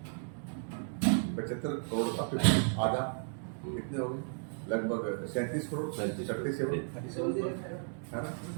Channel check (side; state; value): left; silent; 55 dB below the other